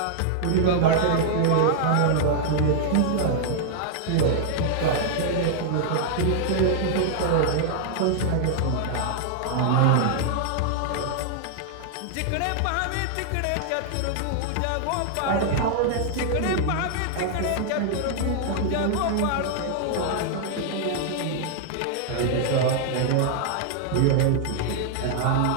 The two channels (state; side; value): different; both; correlation -0.01